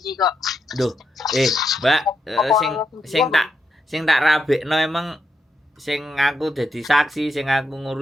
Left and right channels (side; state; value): both; normal; correlation 0.82